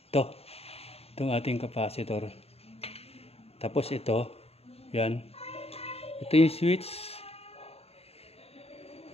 itong ating capacitor. Tapos ito, yan, ito yung switch.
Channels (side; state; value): right; late; 0.29 ms